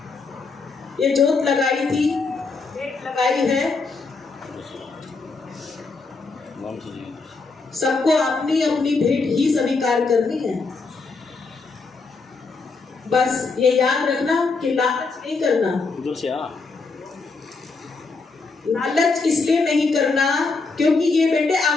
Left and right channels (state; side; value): quieter; right; 4.1 dB